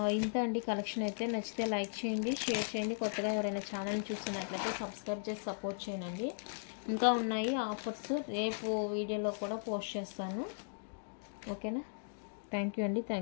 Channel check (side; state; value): right; silent; digital silence